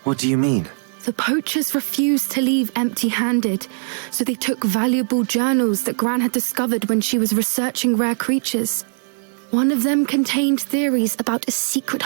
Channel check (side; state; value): left; silent; digital silence